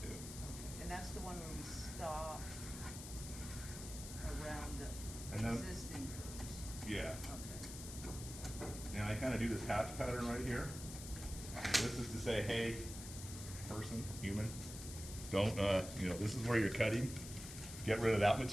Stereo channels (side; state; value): left; noise; hiss, 10 dB below the sound